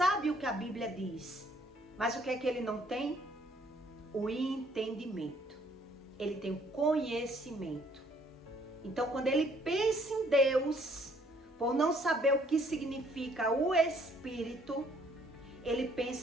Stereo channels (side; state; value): both; normal; correlation 0.64